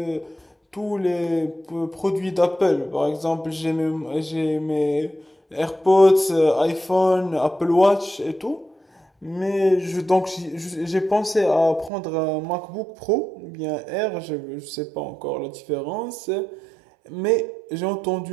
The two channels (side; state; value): left; drops out; at 11.9 s